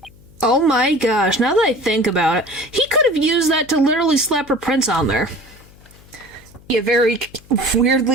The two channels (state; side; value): noise; left; hum, 25 dB below the sound